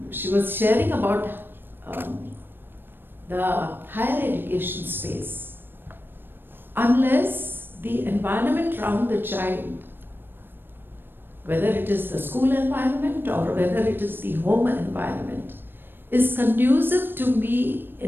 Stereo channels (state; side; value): late; left; 0.097 ms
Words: she was sharing about the higher education space. Unless the environment around the child, whether it is the school environment or whether it is the home environment, is conducive to be